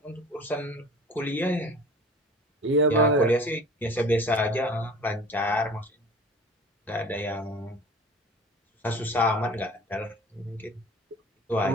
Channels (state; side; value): normal; both; correlation 0.42